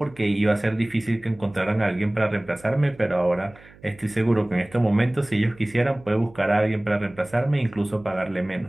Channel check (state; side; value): noise; right; hum, 24 dB below the sound